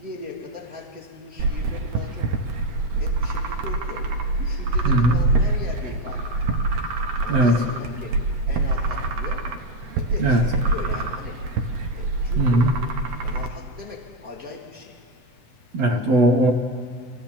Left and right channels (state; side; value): late; left; 7.9 ms